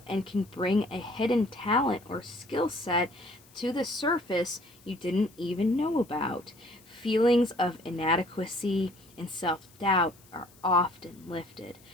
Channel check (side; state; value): left; noise; hiss, 26 dB below the sound